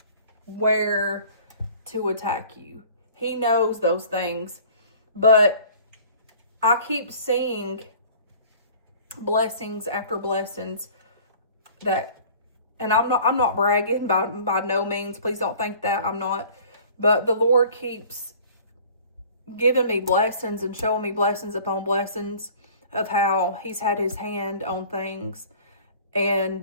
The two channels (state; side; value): inverted; both; correlation -0.48